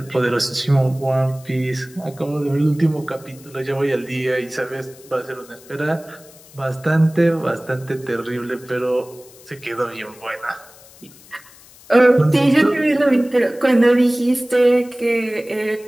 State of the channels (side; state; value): left; noise; hiss, 23 dB below the sound